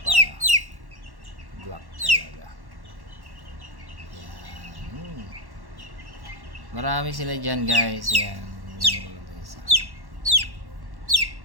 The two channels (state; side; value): late; left; 1.1 ms